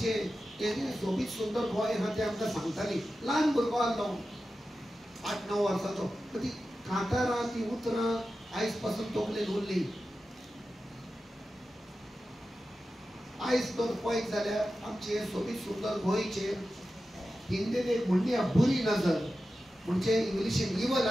सोबीत सुंदर गोंय आहा ते आमकां सांगताली ल्हान भुरगो आसलो 8-9 वर्साचो ती कांतारां ती उतरां आयज पासून तोखलेन उरली आयज तर पळयत जाल्यार आमचे सोबीत सुंदर गोंयचे हिंदीन एक म्हणली बुरी नजर म्हणजे इंग्लिशीन इवल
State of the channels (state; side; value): normal; both; correlation 0.93